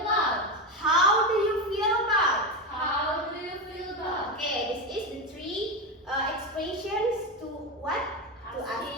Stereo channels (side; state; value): both; normal; correlation 0.15